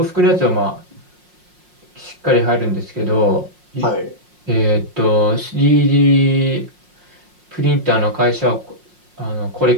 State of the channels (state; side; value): late; left; 5.6 ms